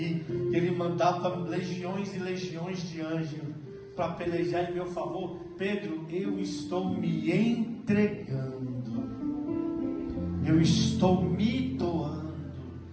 que ele mandava legiões e legiões de anjos para pelejar em meu favor? Pedro, eu estou me entregando, eu estou me doando,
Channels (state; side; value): identical; both; correlation 1.00